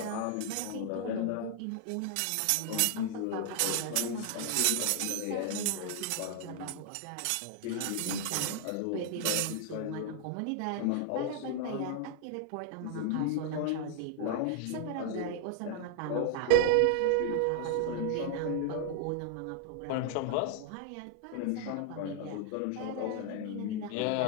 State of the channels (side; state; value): both; different; correlation 0.00